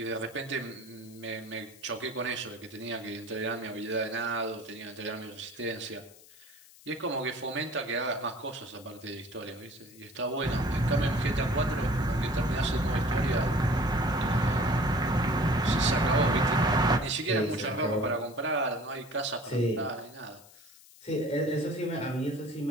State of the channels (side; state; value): left; noise; hiss, 23 dB below the sound